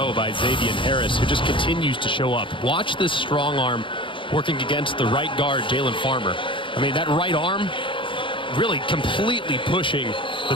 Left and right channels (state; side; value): late; right; 0.24 ms